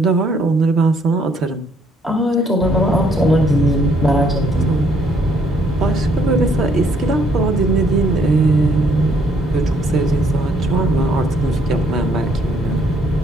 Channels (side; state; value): both; normal; correlation 0.67